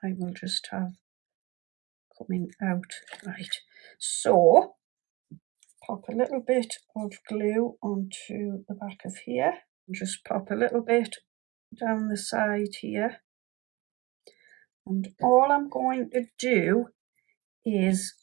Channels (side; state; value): left; quieter; 22.4 dB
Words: I will just have coming out. Right. So pop a little bit of glue onto the back of here. Just pop a little bit down the side here. And all I'm going to do is